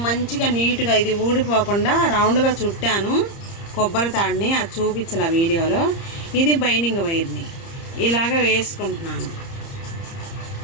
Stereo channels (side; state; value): right; late; 30 ms